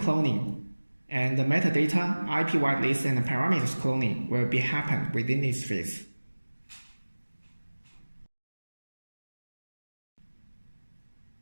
and the metadata, IP whitelist, and the parameters cloning will be happen within this phase.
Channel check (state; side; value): inverted; both; correlation -1.00